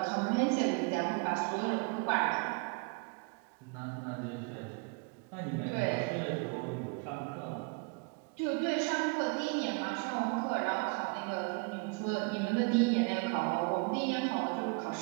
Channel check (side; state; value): left; quieter; 33.2 dB